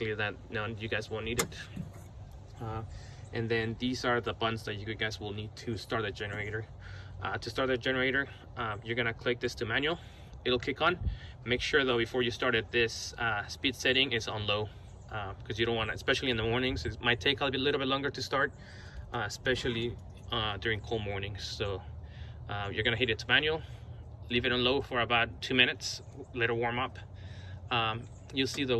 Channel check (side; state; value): both; identical; correlation 1.00